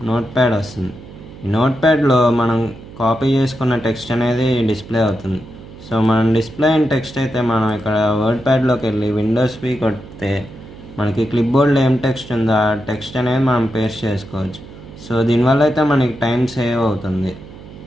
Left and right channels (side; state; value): right; noise; hum, 17 dB below the sound